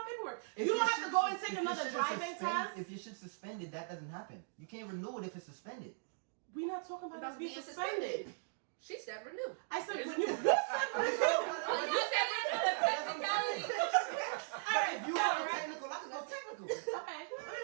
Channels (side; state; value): left; silent; digital silence